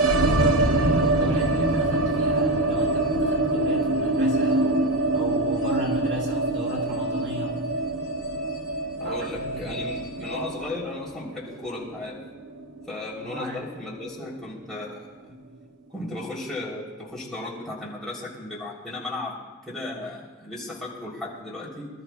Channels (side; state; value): both; normal; correlation 0.14